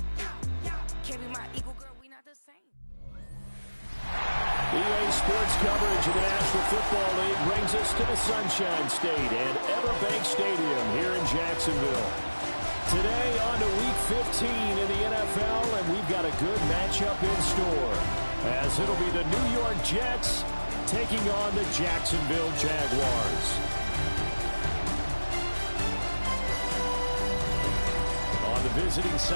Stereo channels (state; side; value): inverted; both; correlation -1.00